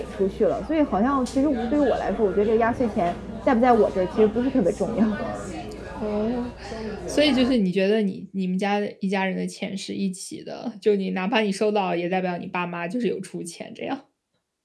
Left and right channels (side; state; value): both; identical; correlation 1.00